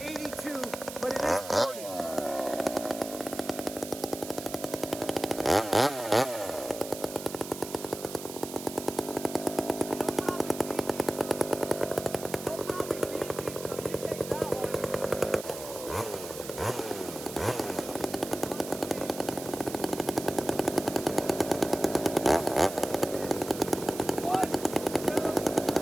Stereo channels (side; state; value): right; noise; hiss, 11 dB below the sound